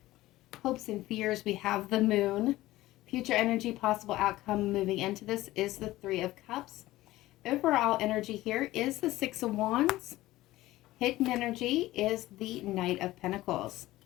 Hopes and fears, we have the Moon. Future energy, possible outcome moving into this is the Three of Cups. Overall energy here is the Six of Wands. Hidden energy is the Knight of Pentacles.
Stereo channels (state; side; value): quieter; right; 16.9 dB